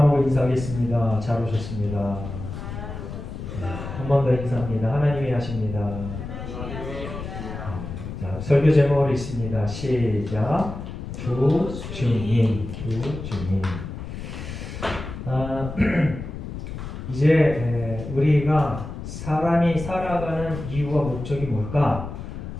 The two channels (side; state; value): left; noise; rumble, 8 dB below the sound